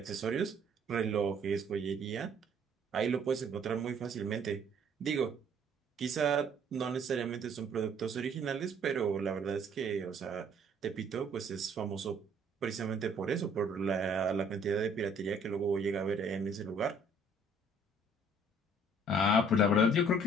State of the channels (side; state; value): both; normal; correlation 0.59